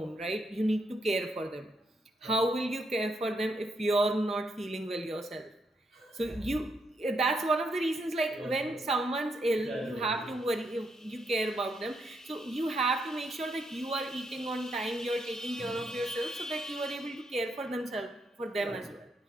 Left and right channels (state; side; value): normal; both; correlation 0.78